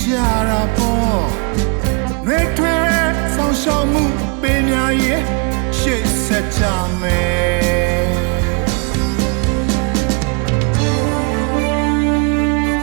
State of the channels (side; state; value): left; quieter; 31.7 dB